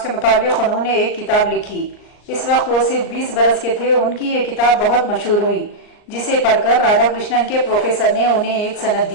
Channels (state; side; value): late; right; 39 ms